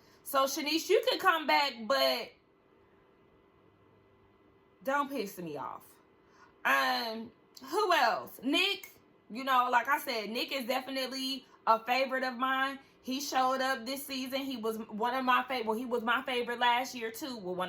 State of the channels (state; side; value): identical; both; correlation 1.00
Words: So Shanice, you can come back, but don't piss me off. Who else? Nick. Like I said, Nick is definitely a favorite of mine. He showed up this season. He was one of my favorite. Well, he was my favorite last year too. Well,